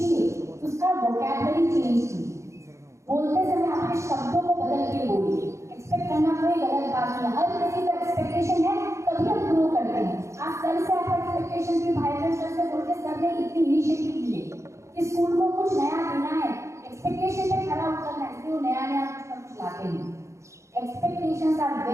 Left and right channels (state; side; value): late; left; 0.14 ms